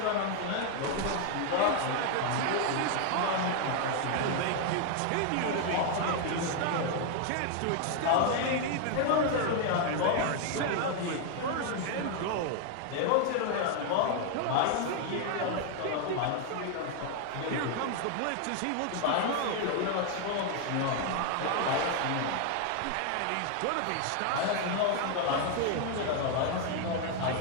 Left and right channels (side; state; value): both; different; correlation 0.00